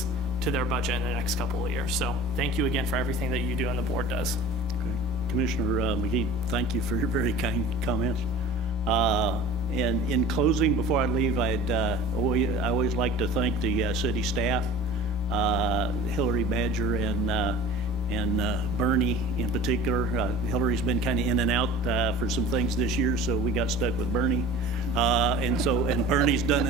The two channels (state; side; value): normal; both; correlation 0.41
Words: to their budget in the next couple of years. So thank you again for everything that you do and the board does. Okay. Commissioner McGee, thank you for your very kind comments. And in closing, before I leave, I always like to thank the city staff, Hillary Badger and Bernie in particular. Hillary's been kind of in and out for some things this year, so we got stuck with Bernie. And Bernie's done